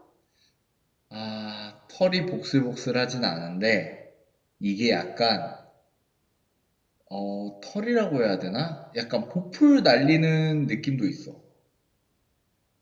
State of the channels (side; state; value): both; identical; correlation 1.00